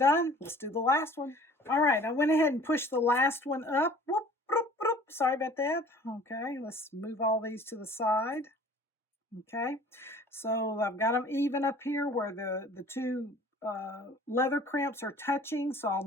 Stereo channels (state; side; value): normal; both; correlation 0.49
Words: Let's do the last one. All right, I went ahead and pushed the last one up. Whoop, whoop, whoop. Sorry about that. Okay, let's move all these to the side. Okay, so I've got them even up here where the two leather crimps are touching, so I'll